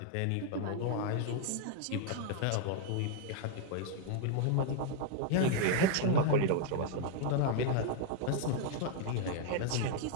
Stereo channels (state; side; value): different; both; correlation 0.00